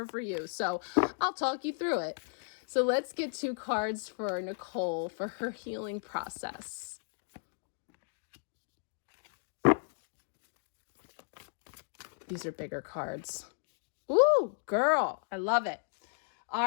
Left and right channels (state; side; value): silent; right; digital silence